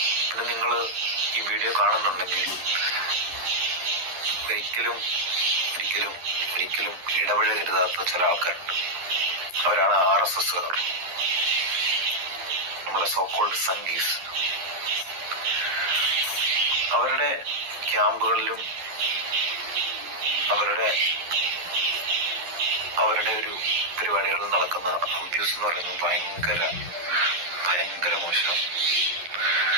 പിന്നെ നിങ്ങൾ ഈ വീഡിയോ കാണുന്നുണ്ടെങ്കിൽ ഒരിക്കലും ഒരിക്കലും ഒരിക്കലും ഇടപഴകരുതാത്ത ചില ആൾക്കാരുണ്ട്. അവരാണ് RSSകാർ, നമ്മളെ സോക്കോൾഡ് സംഗീസ്. അവരുടെ ക്യാമ്പുകളിലും അവരുടെ ഒരു പരിപാടികളിൽ നടക്കുന്ന അബ്യൂസ് എന്ന് പറയുന്നത് ഭയങ്കര മോശം,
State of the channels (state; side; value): late; left; 11 ms